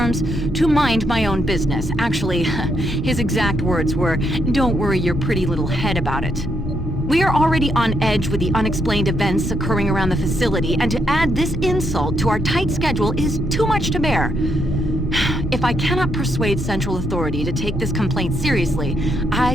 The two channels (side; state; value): both; normal; correlation 0.77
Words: to mind my own business. Actually, his exact words were, "Don't worry your pretty little head about it." We are already on edge with the unexplained events occurring around the facility, and to add this insult to our tight schedule is too much to bear. If I cannot persuade Central Authority to take this complaint seriously,